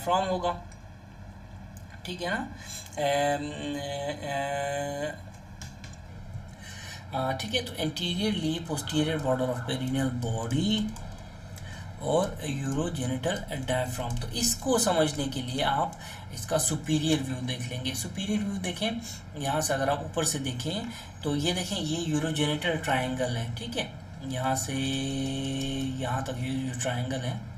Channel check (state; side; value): identical; both; correlation 1.00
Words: होगा। ठीक है ना, ठीक है, तो anteriorly posterior border of perineal body और यूरोजेनिटल डायफ्राम। तो इसको समझने के लिए आप इसका सुपीरियर व्यू देख लेंगे। सुपीरियर व्यू देखें, यहाँ से अगर आप ऊपर से देखें तो ये देखें, ये यूरोजेनिटल ट्रायंगल है। ठीक है, यहाँ से यहाँ तक ये जो ट्रायंगल है,